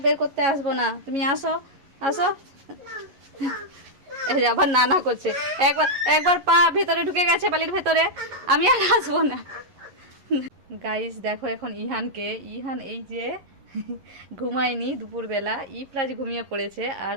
বের করতে আসবো না, তুমি আসো আসো। এই যে আবার নানা করছে, একবার পা ভেতরে ঢুকে গেছে বালির ভেতরে, আমি আর আসবো না। গাইস দেখো এখন ইহান এই যে ঘুমায়নি দুপুরবেলা, ইফরাজ ঘুমিয়ে পড়েছে, আর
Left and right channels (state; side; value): late; left; 11 ms